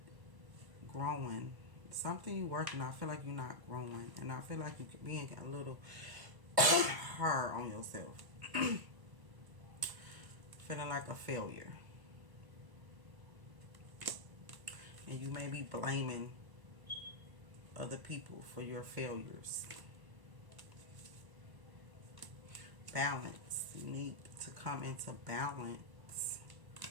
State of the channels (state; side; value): late; left; 1.1 ms